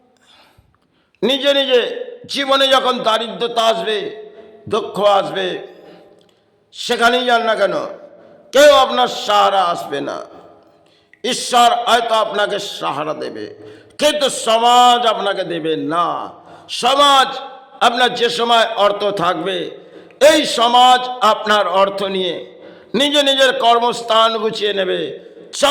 নিজে নিজে জীবনে যখন দারিদ্রতা আসবে, দুঃখ আসবে, সেখানেই যান না কেন, কেউ আপনার সাহারা আসবে না। ঈশ্বর হয়তো আপনাকে সাহারা দেবে, কিন্তু সমাজ আপনাকে দেবে না। সমাজ আপনার যে সময় অর্থ থাকবে, এই সমাজ আপনার অর্থ নিয়ে নিজের কর্মস্থান গুছিয়ে নেবে।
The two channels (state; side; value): identical; both; correlation 1.00